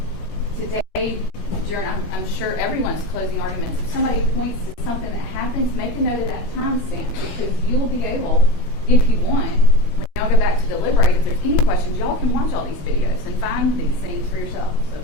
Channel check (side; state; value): right; late; 16 ms